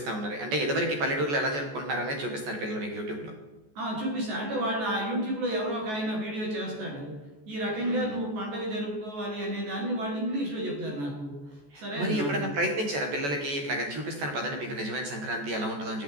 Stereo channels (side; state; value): left; late; 14 ms